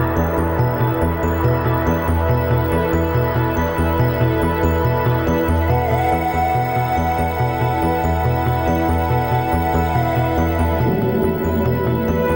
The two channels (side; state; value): both; identical; correlation 1.00